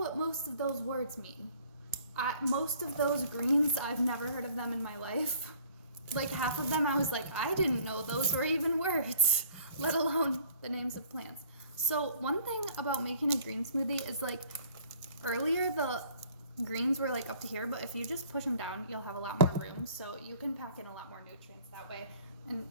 most of those words mean. Most of those greens, I've never heard of them in my life. Half of them, I was I didn't know those were even words, let alone the names of plants. So one thing about making a green smoothie is earlier the greens were up to here, but if you just push them down, you'll have a lot more room, so you can pack in a lot more nutrients that way. And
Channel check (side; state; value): both; inverted; correlation -0.54